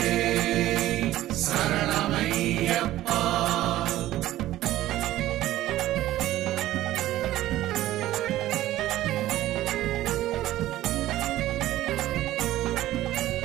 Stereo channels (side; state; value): left; quieter; 14.7 dB